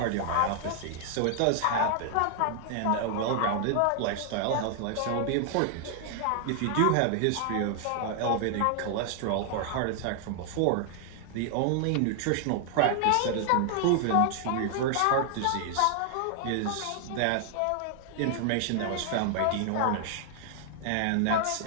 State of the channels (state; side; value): different; both; correlation 0.00